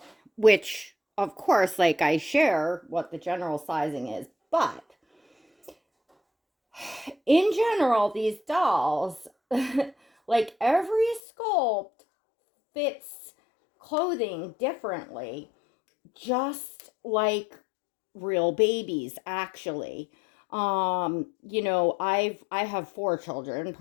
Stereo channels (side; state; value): right; drops out; at 11.2 s